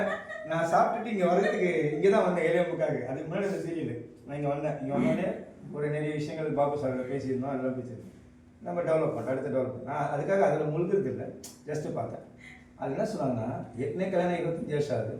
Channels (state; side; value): identical; both; correlation 1.00